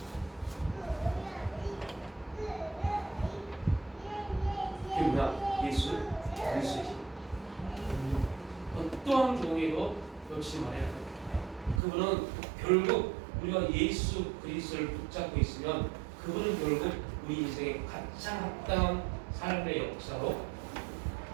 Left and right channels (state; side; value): drops out; left; at 11.8 s